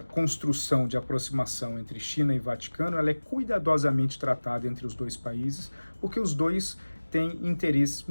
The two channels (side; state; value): both; inverted; correlation -1.00